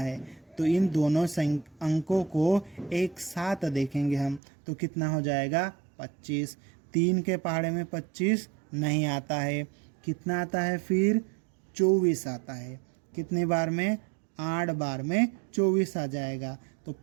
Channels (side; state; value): left; drops out; at 4.4 s